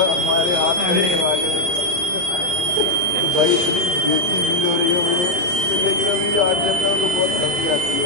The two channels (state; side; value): late; left; 29 ms